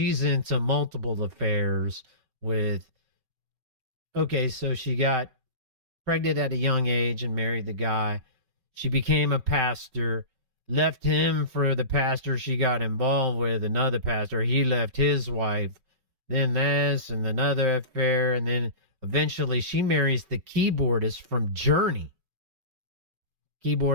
into multiple affairs with, okay, so she got pregnant at a young age and married the guy. She became a pastor, left him for the pastor she got involved with, another pastor. He left his wife, then this and another affair, and then eventually she marries the keyboardist from Journey.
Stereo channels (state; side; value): late; left; 5.3 ms